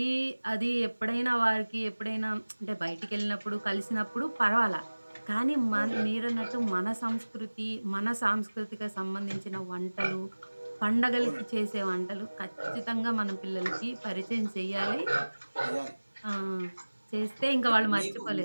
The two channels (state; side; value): inverted; both; correlation -1.00